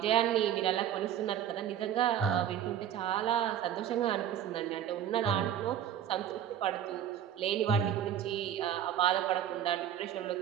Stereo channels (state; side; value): quieter; left; 10.0 dB